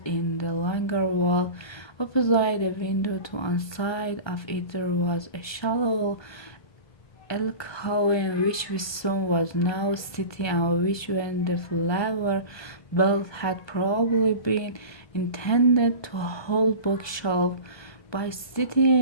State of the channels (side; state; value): right; late; 1.2 ms